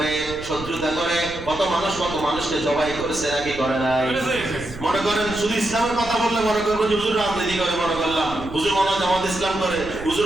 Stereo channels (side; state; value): right; noise; rumble, 14 dB below the sound